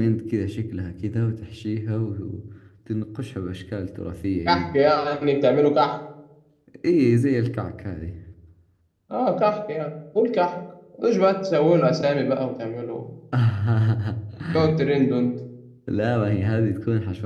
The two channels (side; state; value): both; identical; correlation 1.00